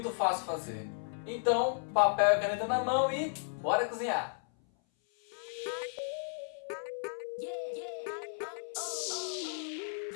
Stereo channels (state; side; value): silent; right; 55 dB below the other